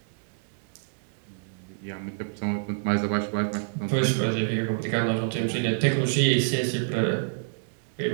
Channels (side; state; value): left; silent; digital silence